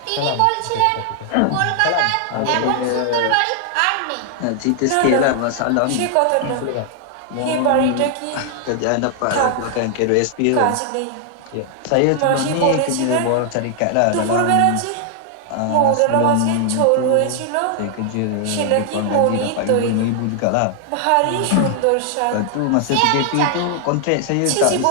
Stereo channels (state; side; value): different; both; correlation 0.00